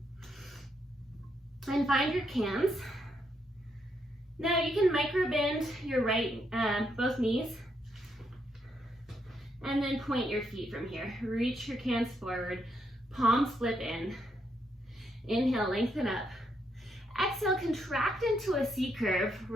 And find your cans. Now you can micro bend your both knees. And then point your feet from here. Reach your cans forward. Palms flip in. Inhale, lengthen up. Exhale, contract into a C curve.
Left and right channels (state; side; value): normal; both; correlation 0.77